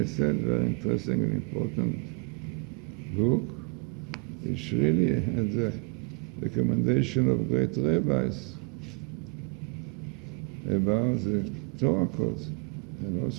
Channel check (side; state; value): left; quieter; 36.1 dB